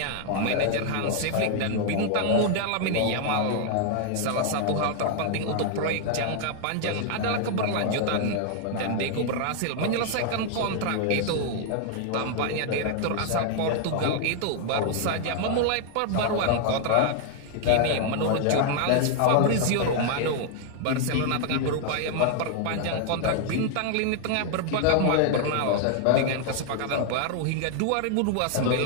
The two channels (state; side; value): different; both; correlation 0.00